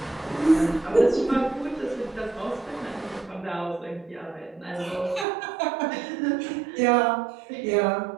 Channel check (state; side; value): drops out; left; at 5.2 s